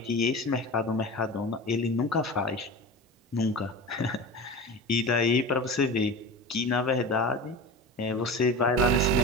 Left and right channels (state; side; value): normal; both; correlation 0.31